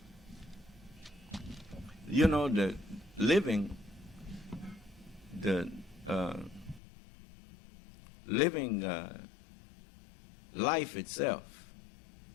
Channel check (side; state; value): right; drops out; at 6.8 s